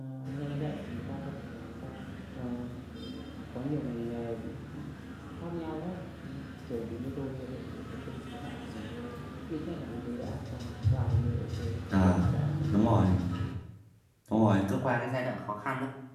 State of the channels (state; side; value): identical; both; correlation 1.00